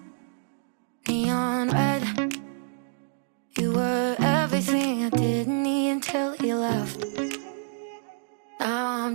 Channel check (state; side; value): silent; left; digital silence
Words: neon red. You were everything I didn't need until you left. Now